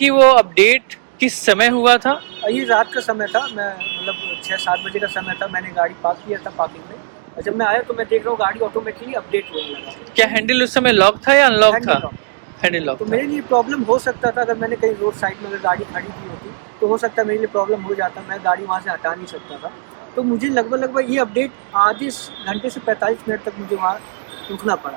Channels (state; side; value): silent; left; 67 dB below the other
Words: वो अपडेट किस समय हुआ था? ये रात का समय था, मैं मतलब 6-7 बजे का समय था, मैंने गाड़ी पार्क किया था पार्किंग में, और जब मैं आया तो मैं देख रहा हूँ गाड़ी ऑटोमेटिकली अपडेट लेने लगा। क्या हैंडल उस समय लॉक था या अनलॉक था? Handle lock. तो मेरे लिए प्रॉब्लम हो सकता था, अगर मैंने कहीं रोड साइड में अगर गाड़ी खड़ी की होती तो हो सकता है मेरे लिए प्रॉब्लम हो जाता, मैं गाड़ी वहाँ से हटा नहीं सकता था। तो मुझे लगभग ये अपडेट आधे घंटे से 45 मिनट तक मुझे वहाँ रुकना